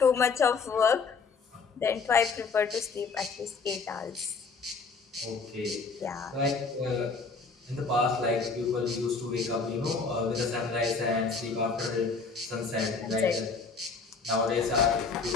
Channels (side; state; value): right; quieter; 4.7 dB